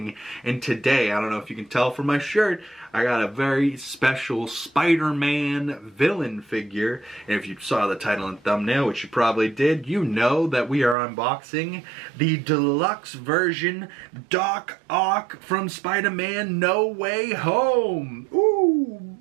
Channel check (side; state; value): left; drops out; at 11.0 s